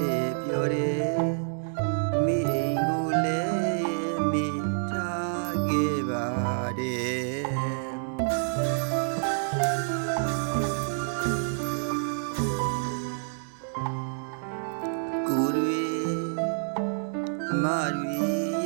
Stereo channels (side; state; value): left; silent; digital silence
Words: ည်းပြောတယ်မိအိမ်ကိုလည်းမိထားခဲ့ပါတယ်ကိုတွေအမတွေ